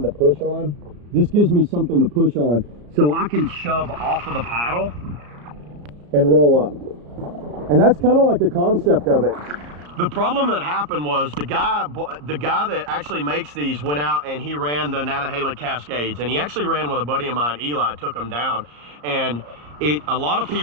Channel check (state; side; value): late; left; 34 ms